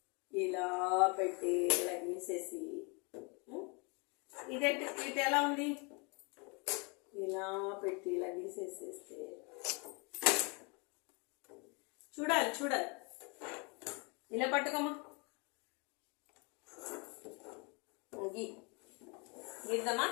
ఇలా పెట్టి ఇలా గీసేసి ఇటు ఎలా ఉంది? ఇలా పెట్టి ఇలా గీసేసేస్తే చూడాలి. ఇలా పట్టుకోమా. గీద్దామా?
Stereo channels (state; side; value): quieter; right; 31.7 dB